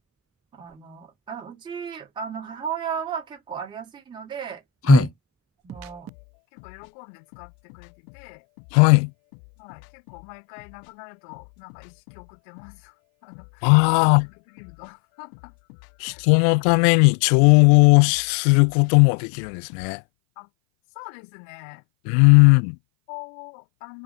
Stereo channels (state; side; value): drops out; right; at 6.1 s